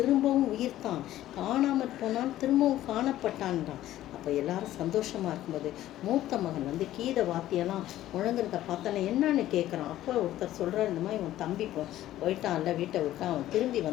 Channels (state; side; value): quieter; right; 13.9 dB